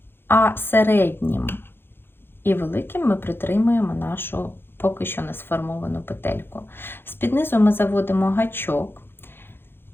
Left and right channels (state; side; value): late; right; 0.10 ms